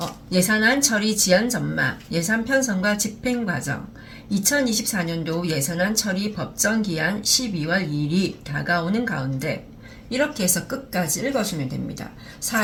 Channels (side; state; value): both; identical; correlation 1.00